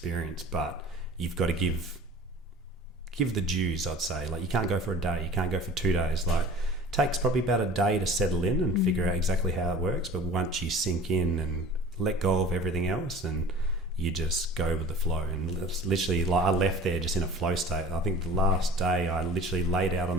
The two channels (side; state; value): both; normal; correlation 0.44